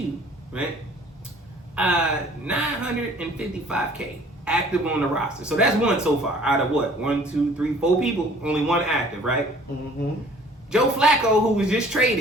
right? $955K active on the roster. So that's one so far. Out of what? 1, 2, 3, 4 people, only one active, right? Mm-hmm. Joe Flacco, who was just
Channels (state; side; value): normal; both; correlation 0.53